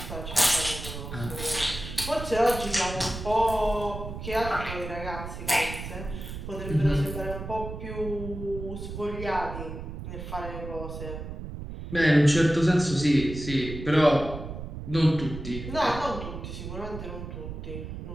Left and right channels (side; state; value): right; noise; rumble, 8 dB below the sound